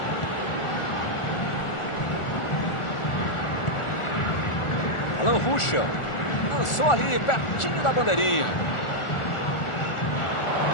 Alan Ruschel lançou ali pertinho da bandeirinha.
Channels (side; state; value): right; late; 1.4 ms